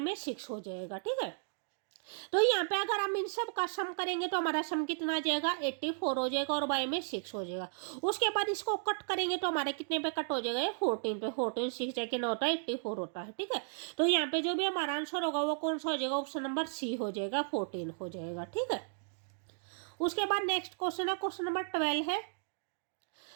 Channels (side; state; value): left; silent; digital silence